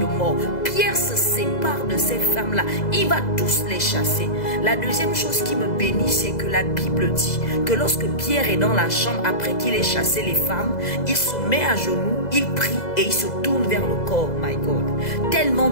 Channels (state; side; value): late; right; 2.0 ms